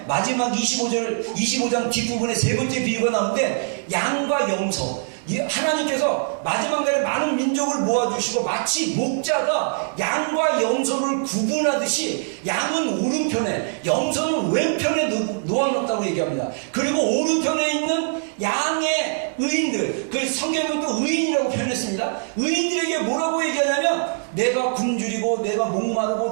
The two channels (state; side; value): silent; left; digital silence